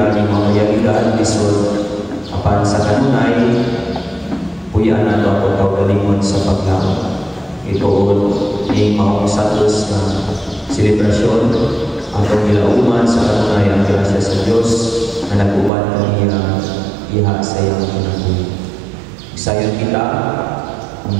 di mga yagigaan lisod apan sa kanunay puyan na ako tawgalingon sa paglang itoon ng mga usatos na selebrasyon atong gilauman sa kanunay ang grasya sa Diyos na nagubad kaniya iha sa iyang kinabuhi. Sayang kita ang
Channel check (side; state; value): left; drops out; at 15.7 s